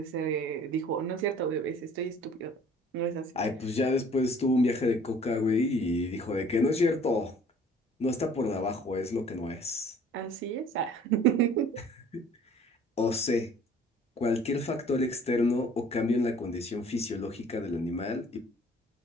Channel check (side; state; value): both; normal; correlation 0.53